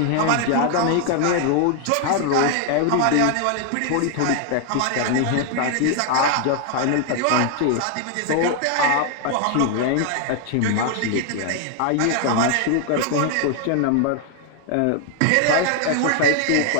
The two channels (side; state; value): both; different; correlation 0.00